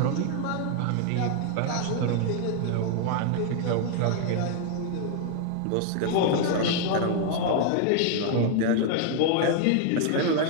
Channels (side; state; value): both; different; correlation 0.00